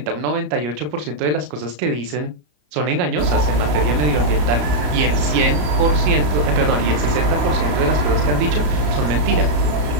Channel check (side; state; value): left; late; 34 ms